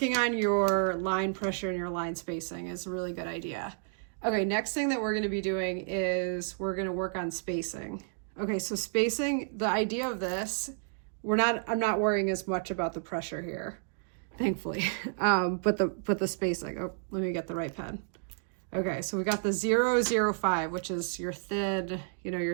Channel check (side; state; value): left; silent; digital silence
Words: on your line pressure and your line spacing is a really good idea. Okay, next thing that we're going to be doing is we're going to work on spacing. Okay, so spacing, the idea of this, I'm not worrying as much about the pressure here, thankfully, but the spacing. Oh, let me get the right pen. Okay, so we got the 0.05, which is your thin, you know,